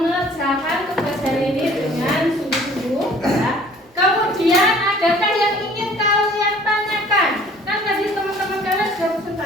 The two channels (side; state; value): both; normal; correlation 0.52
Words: tugas hari ini dengan sungguh-sungguh ya. Kemudian adakah yang ingin kalian tanyakan? Kan tadi teman-teman kalian sudah